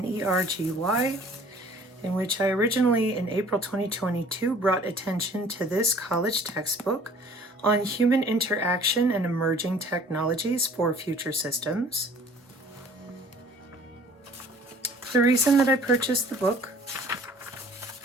in which I originally, in April 2022, brought attention to this college textbook on human interaction and emerging technologies for future systems. The reason that I purchased the book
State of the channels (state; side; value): normal; both; correlation 0.52